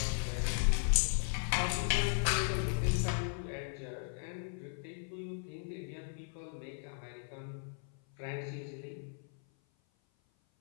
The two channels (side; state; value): right; silent; 53 dB below the other